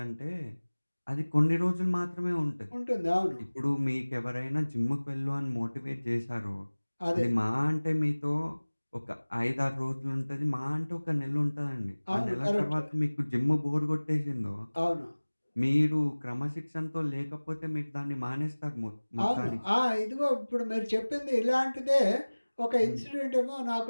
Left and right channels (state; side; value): inverted; both; correlation -1.00